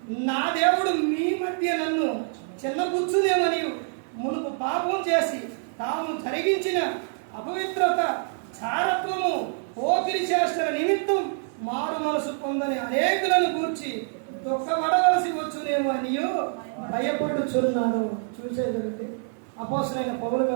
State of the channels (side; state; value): left; silent; 61 dB below the other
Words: నా దేవుడు మీ మధ్య నన్ను చిన్నపుచ్చునేమని, మునుపు పాపం చేసి తాము జరిగించిన అపవిత్రత, చారత్వము, పోకిరి చేష్టల నిమిత్తం మారు మనసు పొందని అనేకులను గూర్చి దుఃఖపడవలసి వచ్చునేమో అని భయపడుచున్నాను. చూసేదండి అపోస్తలుడైన పౌలు